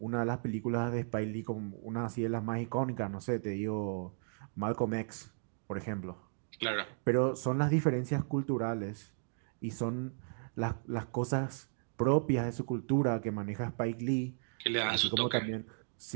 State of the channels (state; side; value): silent; left; digital silence